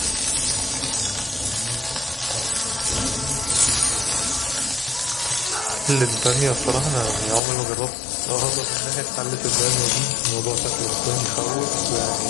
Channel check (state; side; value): drops out; right; at 7.4 s